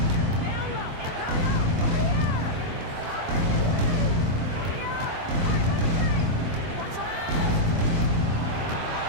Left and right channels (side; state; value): left; late; 23 ms